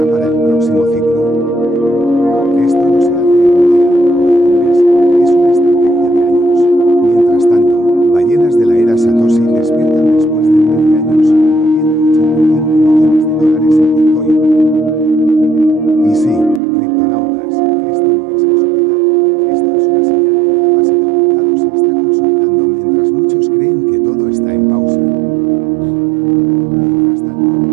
para el próximo ciclo. Esto no se hace en un día, en un mes, es una estrategia de años. Mientras tanto, ballenas de la era Satoshi despiertan después de 13 años, moviendo $85 millones en Bitcoin. Y sí, criptonautas, esto no es casualidad, esto es una señal de que la base del mercado se está consolidando mientras muchos creen que todo está en pausa. Mientras tanto,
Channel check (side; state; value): left; drops out; at 16.6 s